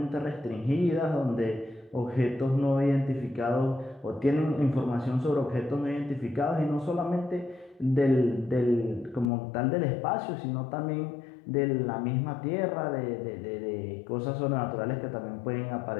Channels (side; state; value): right; drops out; at 9.2 s